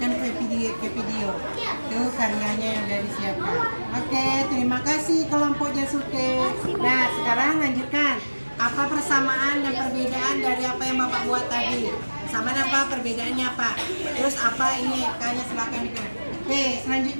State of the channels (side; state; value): both; inverted; correlation -1.00